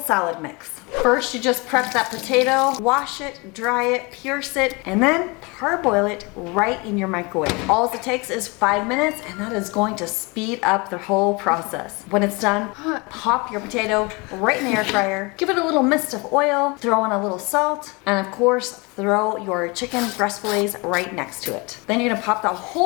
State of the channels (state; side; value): quieter; right; 27.7 dB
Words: mix. First, you just prep that potato, wash it, dry it, pierce it, and then parboil it right in your microwave. All it takes is 5 minutes, and that is going to speed up the whole process. When it's done, pop your potato right in the air fryer, give it a little mist of oil, throw in a little salt, and of course, throw your chicken breast fillets right next to it. Then you're gonna pop the